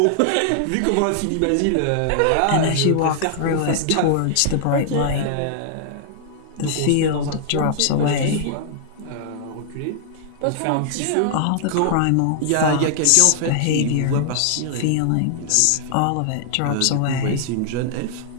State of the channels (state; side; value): different; both; correlation -0.01